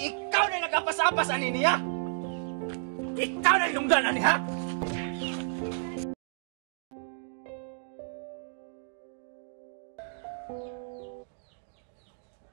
ikaw na nagkapasapas ani niya! Ikaw na inungdan ani ha!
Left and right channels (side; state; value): left; silent; digital silence